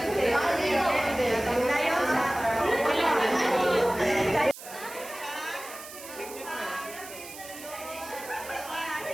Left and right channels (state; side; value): noise; right; hiss, 14 dB below the sound